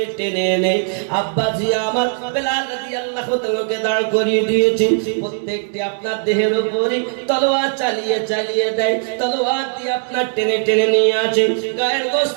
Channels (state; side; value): silent; left; 67 dB below the other